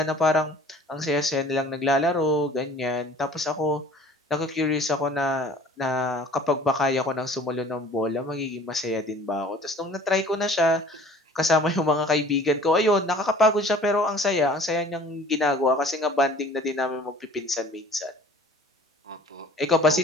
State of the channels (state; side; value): normal; both; correlation 0.49